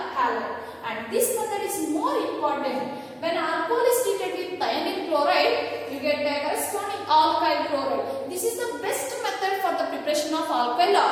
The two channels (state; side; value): identical; both; correlation 1.00